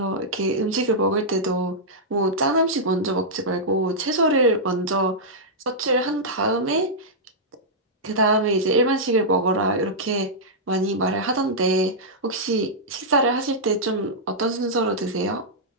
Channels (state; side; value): normal; both; correlation -0.09